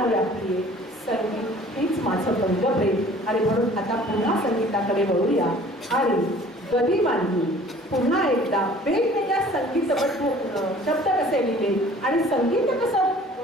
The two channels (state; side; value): normal; both; correlation 0.50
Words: व्यापली आहे संगीत हीच माझं पंगप्रेम आणि म्हणून आता पुन्हा संगीताकडे वळूया आणि गदी मांडली पुन्हा एकदा वेगवेगळ्या संगीतबद्ध शब्द कसे लिहिले आणि संगीत कसं